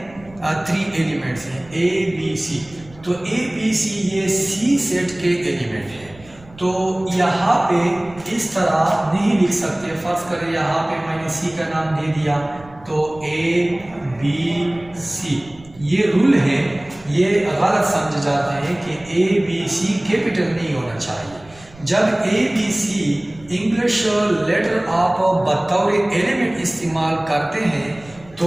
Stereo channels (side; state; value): right; noise; rumble, 23 dB below the sound